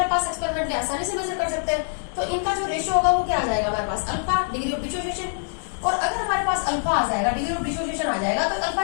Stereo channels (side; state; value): right; silent; digital silence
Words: पास एक्सपेरिमेंटली आसानी से मेजर कर सकते हैं, तो इनका जो रेशियो होगा वो क्या आ जाएगा हमारे पास? Alpha, degree of dissociation. और अगर हमारे पास अल्फा आ जाएगा, डिग्री ऑफ डिसोसिएशन आ जाएगा, तो